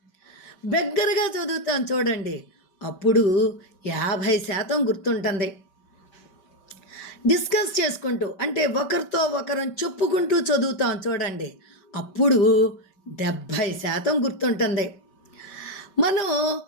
బెగ్గరగా చదువుతాం చూడండి, అప్పుడు 50% గుర్తుంటుంది. డిస్కస్ చేసుకుంటూ అంటే ఒకరితో ఒకరం చెప్పుకుంటూ చదువుతాం చూడండి, అప్పుడు 70% గుర్తుంటుంది. మనం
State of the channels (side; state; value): right; late; 5.2 ms